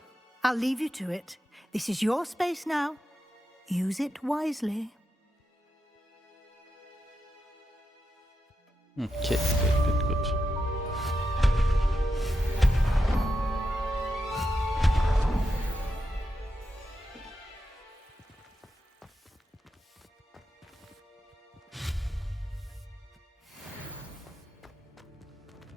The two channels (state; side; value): normal; both; correlation 0.87